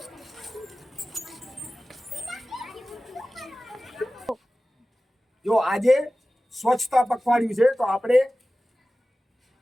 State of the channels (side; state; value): both; normal; correlation 0.96